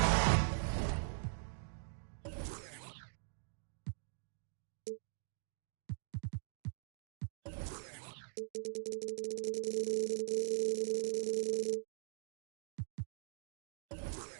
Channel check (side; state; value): left; silent; digital silence